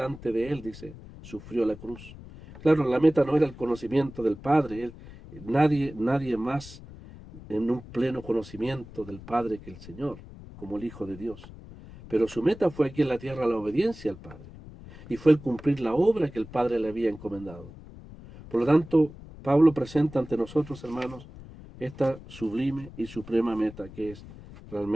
de él, dice, sufrió la cruz. Claro, la meta no era el conocimiento del Padre, nadie más en un pleno conocimiento del Padre que el Señor, como el Hijo de Dios. Pero su meta fue aquí en la tierra la obediencia al Padre, y fue el cumplir la obra que el Padre le había encomendado. Por lo tanto, Pablo presenta ante nosotros, hermanos, esta sublime y suprema meta que es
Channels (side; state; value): left; noise; rumble, 16 dB below the sound